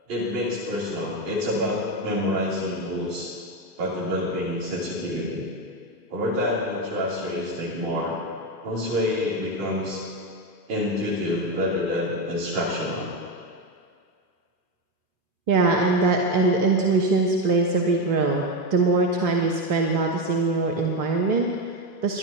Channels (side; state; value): left; late; 2.4 ms